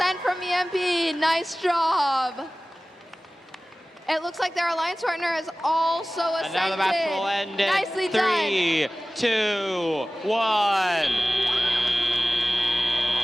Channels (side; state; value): both; normal; correlation 0.97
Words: from EMP. Nice job. It looks like their alliance partner has also ascended. And now the match will end in Nicely 3, 2, 1.